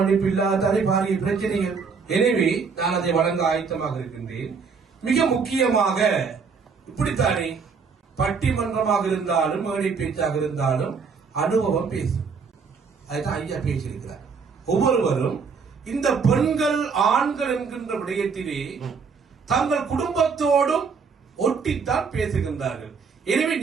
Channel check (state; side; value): quieter; left; 5.4 dB